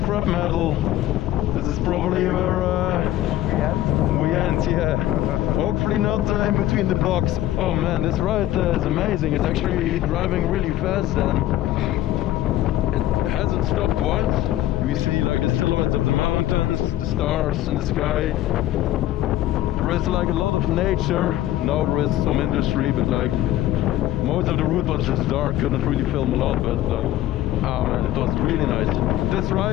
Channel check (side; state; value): right; quieter; 13.9 dB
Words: metal. This is probably where we end, yeah. Hopefully not in between the blocks. Oh man, this ride is amazing. It's actually driving really fast and it has a haven't stopped once. We see like the silhouettes of the mountains, the stars in the sky. There is like a lot of nature. Now there is some industry, but like most of the route was just dark. Couldn't really film a lot, but oh man, it was really nice. This